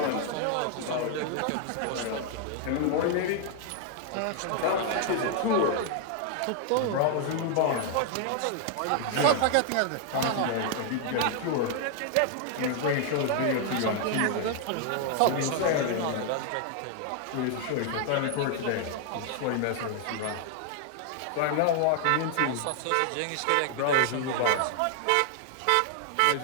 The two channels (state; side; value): different; both; correlation 0.00